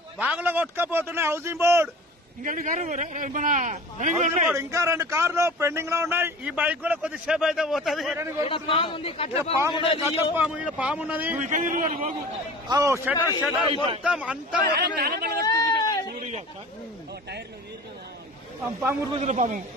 బాగులో కొట్టుకపోతున్నాయి హౌసింగ్ బోర్డ్ ఇంకా మన ఇంకా 2 కార్లు పెండింగ్ లో ఉన్నాయి ఈ బైక్ కూడా కొద్దిసేపు అయితే పోతుంది పాము ఉన్నది షటర్ మొత్తం అంతా పాము పాము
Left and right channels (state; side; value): normal; both; correlation 0.40